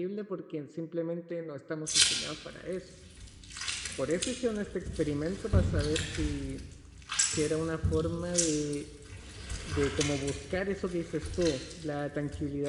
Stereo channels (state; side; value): identical; both; correlation 1.00